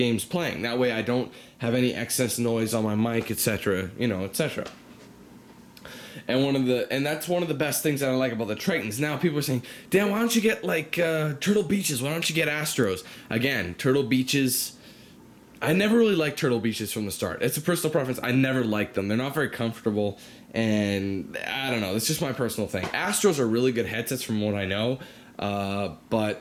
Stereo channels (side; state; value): both; identical; correlation 1.00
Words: playing. That way I don't have any excess noise on my mic, etc., etc. And that's one of the best things that I like about the Tritons. Now people are saying, Dan, why don't you get like Turtle Beaches? Why don't you get Astros? Again, Turtle Beaches, I never really liked Turtle Beaches from the start. It's a personal preference. I never liked them. They're not very comfortable, and I don't know. It's just my personal thing. Astros are really good headsets from what I know,